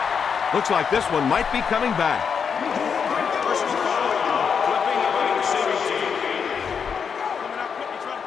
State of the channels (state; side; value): quieter; right; 6.6 dB